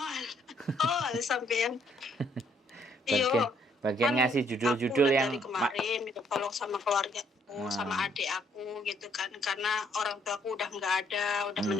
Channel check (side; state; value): both; normal; correlation 0.68